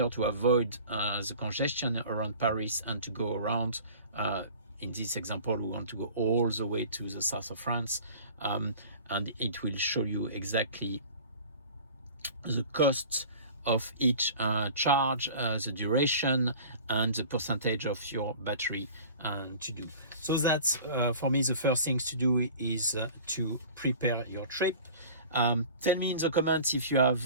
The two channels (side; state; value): both; inverted; correlation -0.43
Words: to avoid the congestion around Paris and to go around. In this example, we want to go all the way to the south of France, and it will show you exactly the cost of each charge, the duration, and the percentage of your battery to do. So that's for me the first things to do is to prepare your trip. Tell me in the comments if you